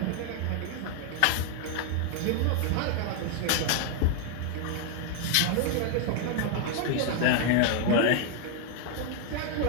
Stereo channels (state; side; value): different; both; correlation 0.01